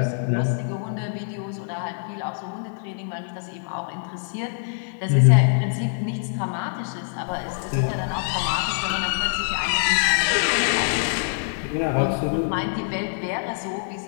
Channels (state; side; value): silent; right; digital silence